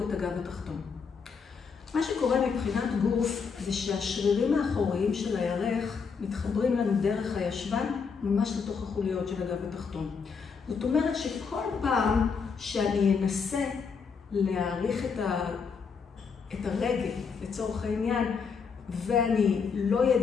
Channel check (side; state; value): right; quieter; 5.7 dB